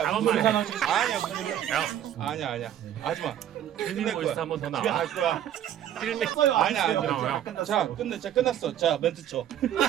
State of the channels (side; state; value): left; quieter; 10.8 dB